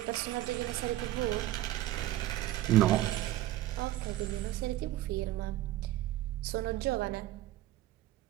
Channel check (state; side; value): quieter; left; 15.0 dB